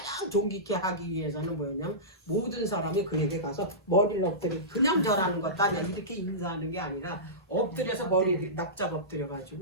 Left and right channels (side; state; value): both; normal; correlation -0.19